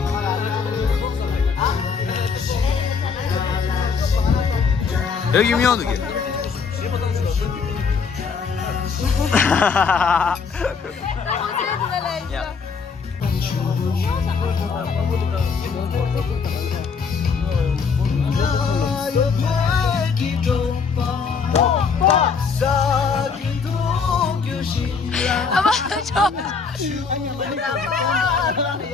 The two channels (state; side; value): quieter; right; 5.5 dB